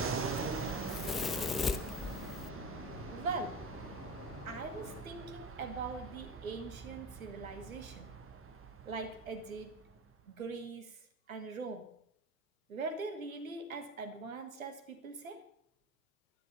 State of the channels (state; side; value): normal; both; correlation 0.29